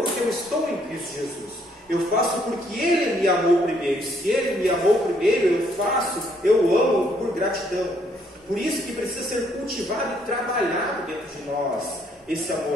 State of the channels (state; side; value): normal; both; correlation 0.68